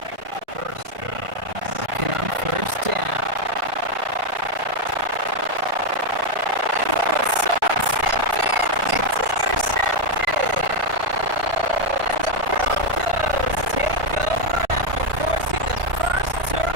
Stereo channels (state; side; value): late; left; 1.5 ms